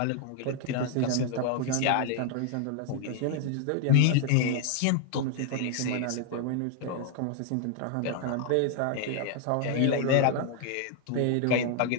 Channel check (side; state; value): both; different; correlation 0.00